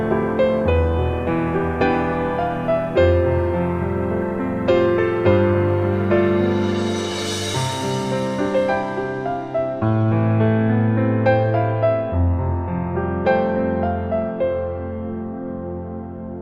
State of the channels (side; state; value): both; identical; correlation 1.00